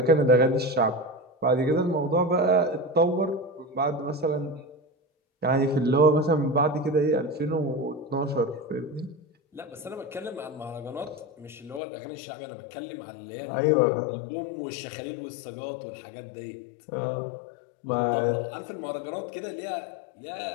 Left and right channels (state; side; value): drops out; right; at 11.8 s